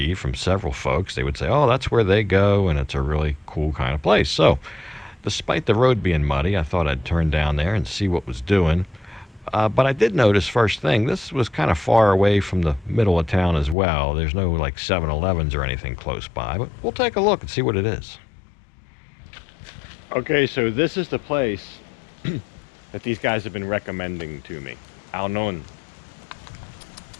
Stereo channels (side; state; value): right; drops out; at 13.8 s